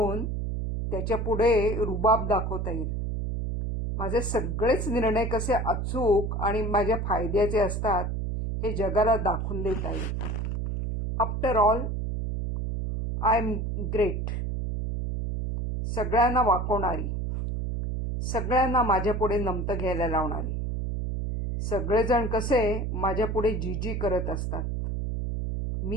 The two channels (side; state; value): right; noise; hum, 2 dB below the sound